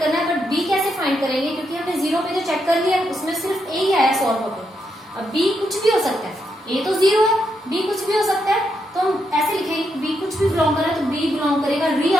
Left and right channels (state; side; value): normal; both; correlation 0.81